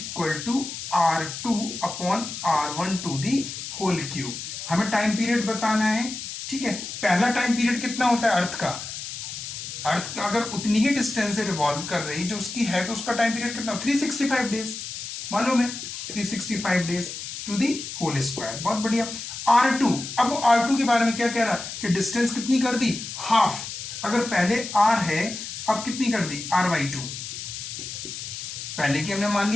to R2/R1 to the whole cube. हमें टाइम पीरियड बताना है, ठीक है। पहला टाइम पीरियड कितना होता है अर्थ का, अर्थ का अगर उतनी ही डिस्टेंस से रिवॉल्व कर रही जो उसकी है, तो उसका टाइम पीरियड कितना, 365 डेज, मालूम है 365 days to the whole square, बहुत बढ़िया। R2, अब वो R2 के बारे में क्या कह रहा है कि डिस्टेंस कितनी कर दी, हाफ, अगर पहले R है अब कितनी कर दी R/2, पहले की हमने मान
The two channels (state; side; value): noise; left; hiss, 8 dB below the sound